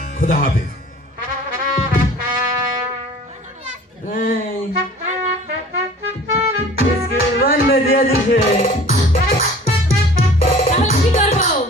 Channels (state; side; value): normal; both; correlation 0.46